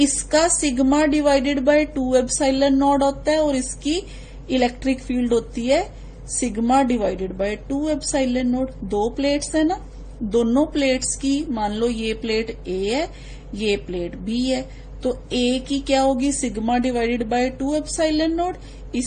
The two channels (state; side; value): identical; both; correlation 1.00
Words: sigma divided by 2 epsilon node होता है, और इसकी इलेक्ट्रिक फील्ड होती है sigma divided by 2 epsilon node. 2 plates है ना, दोनों प्लेट्स की, मान लो ये प्लेट A है, ये प्लेट B है, तो A की क्या होगी, sigma divided by 2 epsilon node.